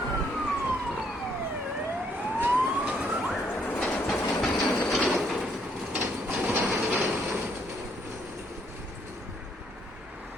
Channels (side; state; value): both; normal; correlation 0.70